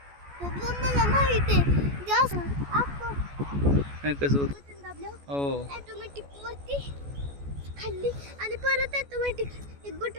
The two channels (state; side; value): late; left; 14 ms